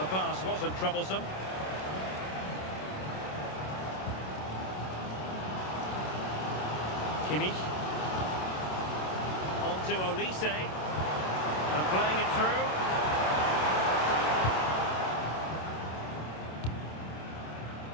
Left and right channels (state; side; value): late; right; 27 ms